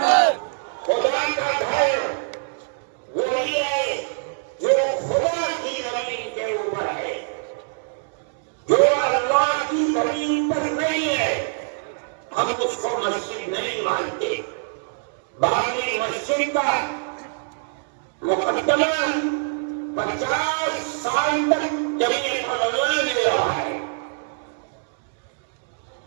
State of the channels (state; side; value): silent; left; digital silence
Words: خدا کا گھر وہی ہے جو خدا کی زمین کے اوپر ہے، جو اللہ ہم اس کو مسجد نہیں مانتے. باقی مسجد کا مقدمہ 50 سال تک جمیل مولانا نے رہا ہے.